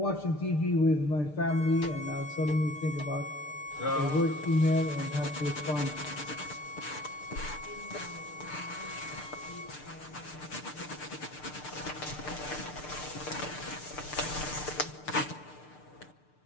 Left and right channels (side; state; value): right; late; 6.7 ms